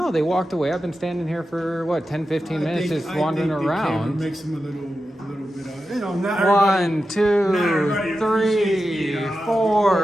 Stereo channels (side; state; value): both; normal; correlation 0.91